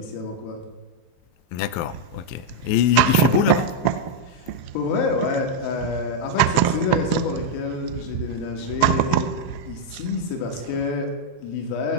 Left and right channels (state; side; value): late; right; 23 ms